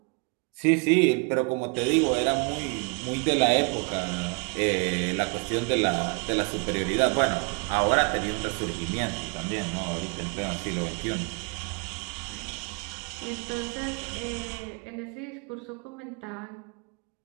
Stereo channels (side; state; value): left; quieter; 34.4 dB